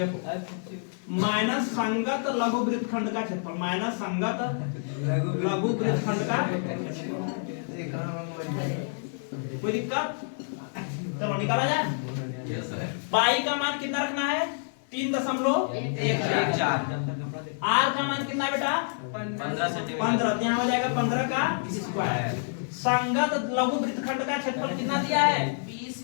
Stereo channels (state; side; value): silent; right; 59 dB below the other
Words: माइनस संगत लघु वृत्तखंड का क्षेत्रफल, माइनस संगत लघु वृत्तखंड का क्षेत्रफल। कोई दिक्कत? चलो निकाला जाए। पाई का मान कितना रखना है? 3.14। आर का मान कितना है बेटा? 15 सेंटीमीटर। 15, तो यहाँ हो जाएगा 15 का स्क्वायर। संगत लघु वृत्तखंड का क्षेत्रफल कितना दिया है?